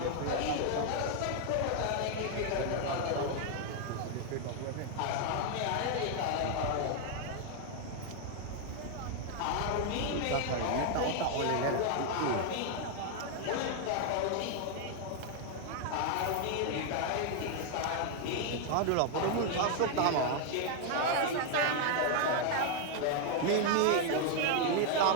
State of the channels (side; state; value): both; different; correlation 0.00